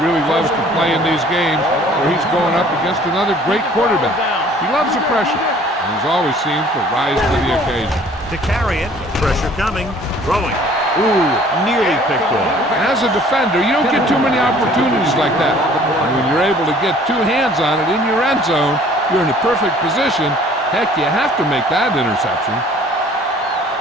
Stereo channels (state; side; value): normal; both; correlation 0.54